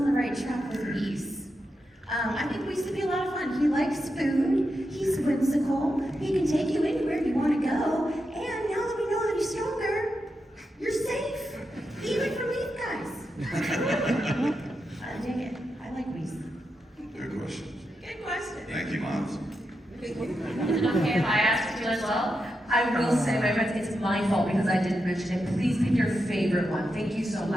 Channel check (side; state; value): both; normal; correlation 0.87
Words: the right track with Whis. I think Whis would be a lot of fun. He likes food, he's whimsical, he can take you anywhere you want to go, and now that we know that he's stronger, you're safe, even from these guys. I dig it. I like Whis. Good questions. Good question. Thank you, Moms. Is it okay if I ask you as well? I will say, my friends, it's my fault because I didn't mention it. Please pick your favorite one. Thank you so